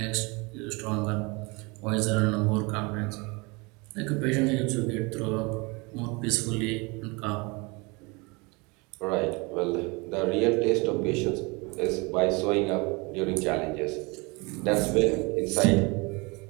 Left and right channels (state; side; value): quieter; left; 27.4 dB